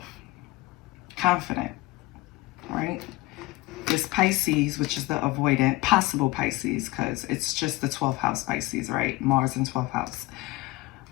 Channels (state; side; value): quieter; right; 20.0 dB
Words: confident, right? This Pisces, which is the avoidant, possible Pisces, because it's just the 12th house Pisces, right? Mars in 12th house.